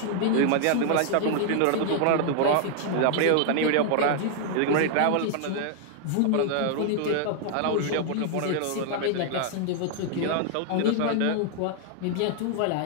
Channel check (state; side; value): different; both; correlation 0.00